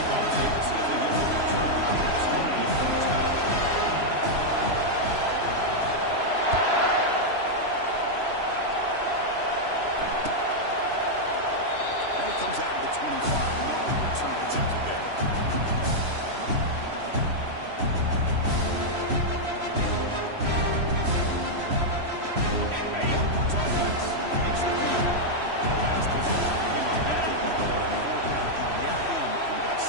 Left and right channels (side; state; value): left; late; 3.0 ms